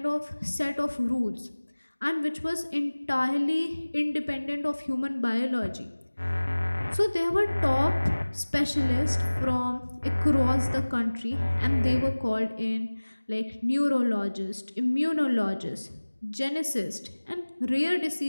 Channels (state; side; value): inverted; both; correlation -1.00